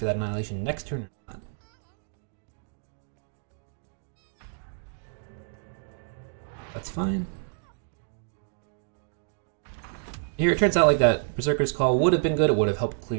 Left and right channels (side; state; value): left; silent; digital silence